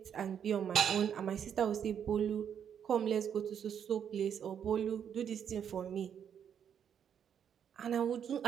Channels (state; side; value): quieter; left; 8.4 dB